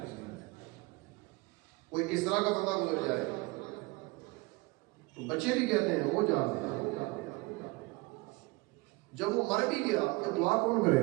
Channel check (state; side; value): quieter; left; 24.1 dB